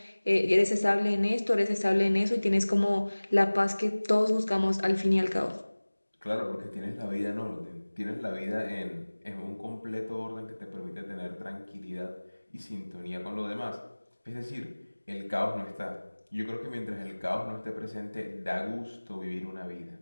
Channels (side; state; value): both; inverted; correlation -1.00